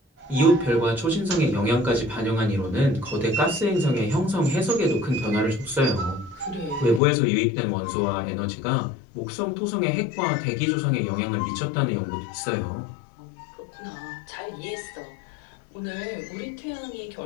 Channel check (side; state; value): right; drops out; at 7.0 s